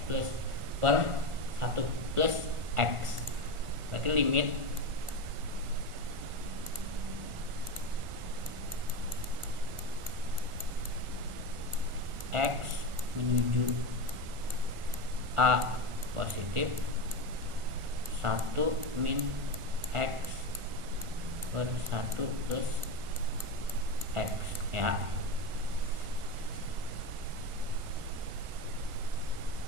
plus per 1 plus X. Berarti limit X menuju A positif 1 min X per 1 plus X ya.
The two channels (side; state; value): left; late; 1.4 ms